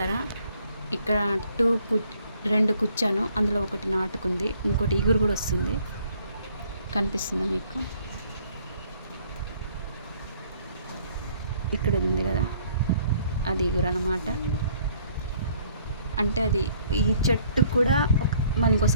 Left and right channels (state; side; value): inverted; both; correlation -0.62